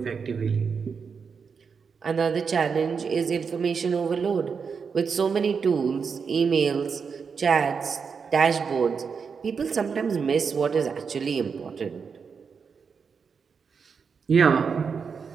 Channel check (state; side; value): quieter; left; 5.9 dB